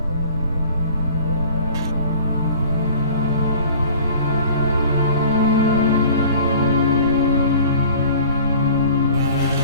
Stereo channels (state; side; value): inverted; both; correlation -0.46